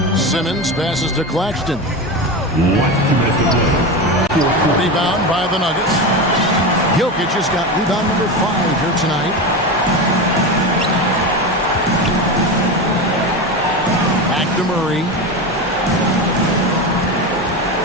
Simmons passes to Claxton. Rebound by the Nuggets. Jokic has got rebound number 5 here tonight. To Murray.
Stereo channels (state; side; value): normal; both; correlation 0.21